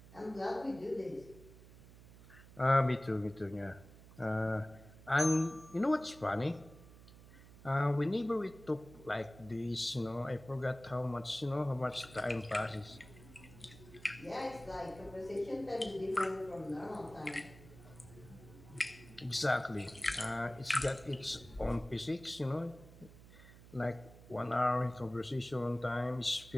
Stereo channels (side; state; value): right; noise; hum, 19 dB below the sound